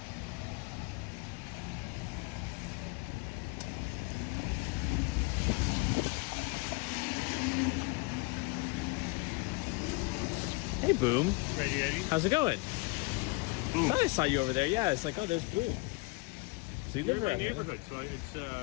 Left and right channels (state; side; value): quieter; right; 26.2 dB